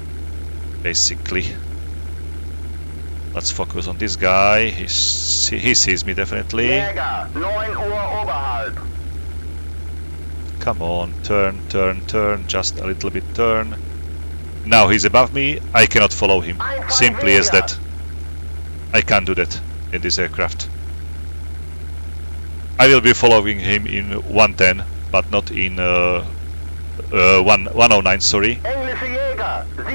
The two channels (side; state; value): both; inverted; correlation -1.00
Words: basically. Let's focus on this guy. He sees me definitely. Jäger, 9 Uhr oberhalb. Come on, turn, turn, turn, just a little bit turn. Now he's above me, I cannot follow him. Simply as that. I can't do that in this aircraft. I will be following him in 110, but not in 109, sorry. Englische Jäger,